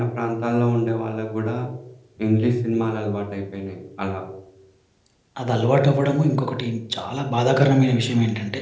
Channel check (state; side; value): identical; both; correlation 1.00